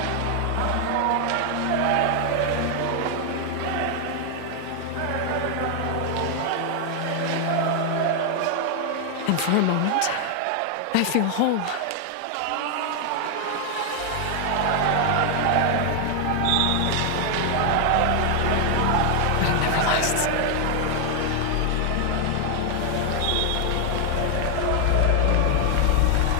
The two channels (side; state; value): both; different; correlation 0.00